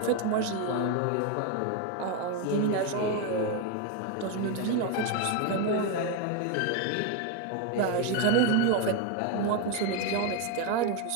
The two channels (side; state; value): both; different; correlation 0.01